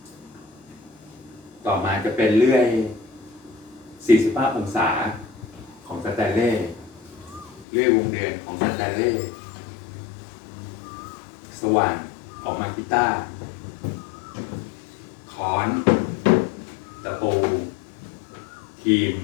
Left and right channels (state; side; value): drops out; right; at 7.7 s